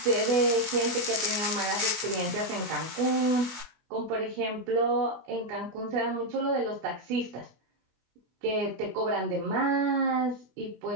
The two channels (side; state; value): left; late; 24 ms